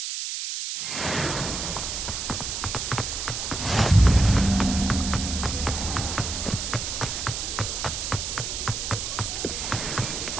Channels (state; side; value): noise; right; hiss, 4 dB below the sound